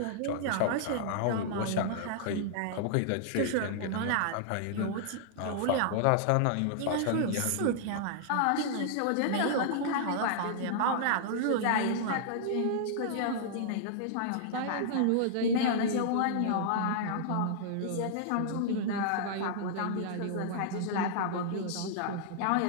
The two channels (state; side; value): different; both; correlation -0.01